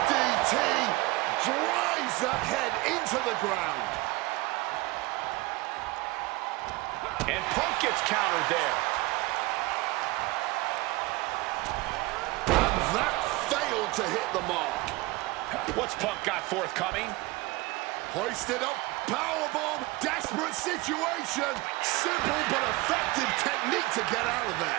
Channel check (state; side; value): quieter; left; 21.4 dB